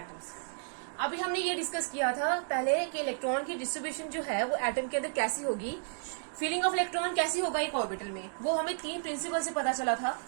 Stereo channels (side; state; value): left; silent; digital silence